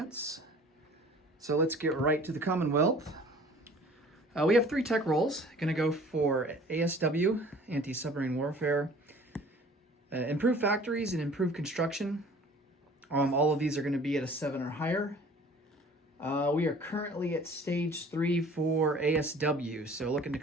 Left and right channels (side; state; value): both; normal; correlation 0.49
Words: So let's get right to the Commonwealth. We have 3 tech rolls. Going to go for ASW, Anti-Submarine Warfare, Improved Factories and Improved Construction. All of these are going to be at a 7 or higher. We are currently at stage 3 for ASW, so looking to